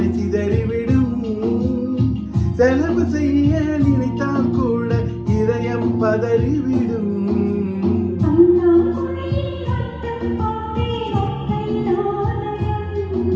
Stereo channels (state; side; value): identical; both; correlation 1.00